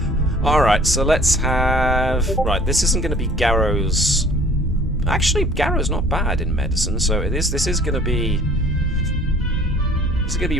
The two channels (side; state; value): both; normal; correlation 0.53